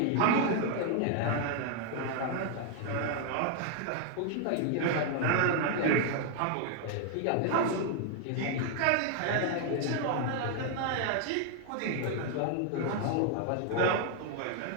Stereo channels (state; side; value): different; both; correlation 0.00